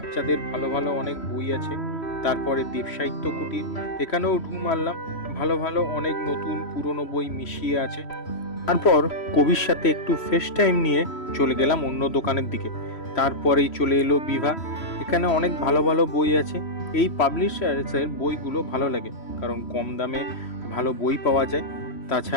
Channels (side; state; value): right; late; 3.1 ms